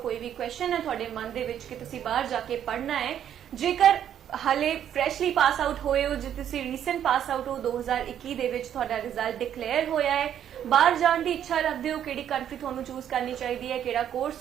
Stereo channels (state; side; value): quieter; left; 9.9 dB